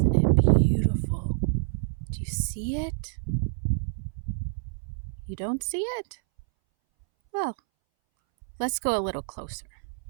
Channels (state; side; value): silent; left; 60 dB below the other